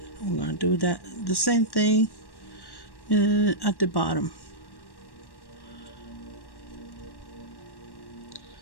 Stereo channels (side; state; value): right; late; 1.1 ms